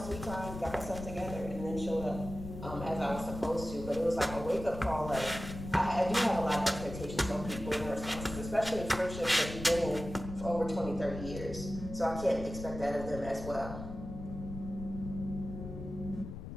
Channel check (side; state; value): left; noise; rumble, 9 dB below the sound